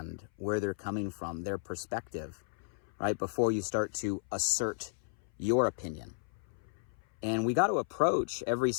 where they're coming from, their perspective, right? Before you start to assert your opinion. And we got to approach every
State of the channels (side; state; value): right; silent; 55 dB below the other